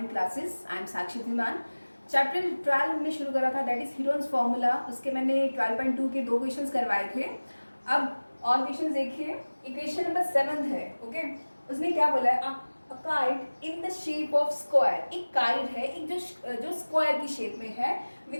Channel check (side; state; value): both; inverted; correlation -1.00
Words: classes. I am Sakshi Dhiman. Chapter 12 हमने शुरू करा था, that is Heron's formula. उसके मैंने 12.2 के 2 क्वेश्चंस करवाए थे. अब और क्वेश्चंस देखिए. इक्वेशन नंबर 7 है. ओके, उसने क्या बोला है? A kite in the shape of square. एक काइट है, एक जो स्क्वायर की शेप में है,